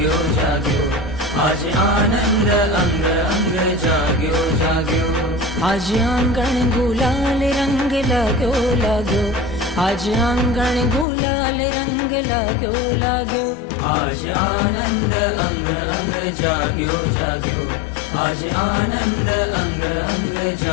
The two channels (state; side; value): drops out; right; at 11.1 s